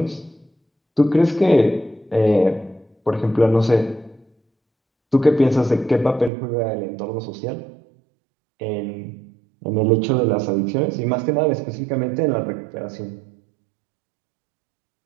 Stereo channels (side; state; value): left; drops out; at 6.3 s